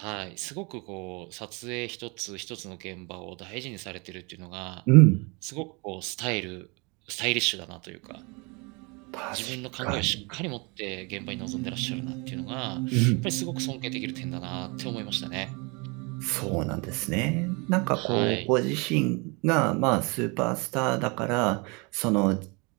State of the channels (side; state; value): left; quieter; 29.6 dB